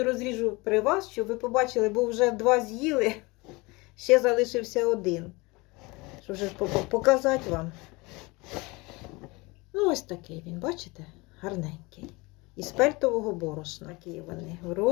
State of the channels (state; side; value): quieter; right; 24.6 dB